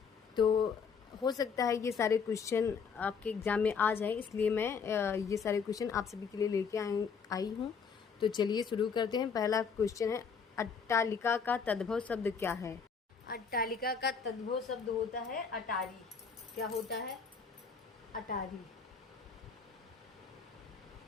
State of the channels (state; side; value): quieter; right; 6.0 dB